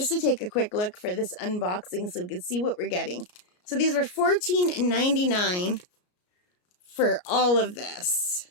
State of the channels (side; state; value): right; late; 33 ms